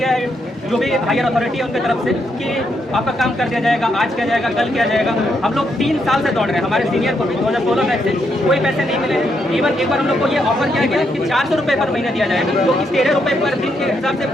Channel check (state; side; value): normal; both; correlation 0.78